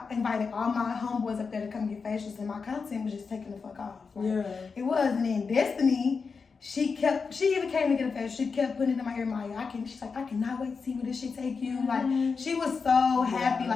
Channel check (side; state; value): right; quieter; 5.1 dB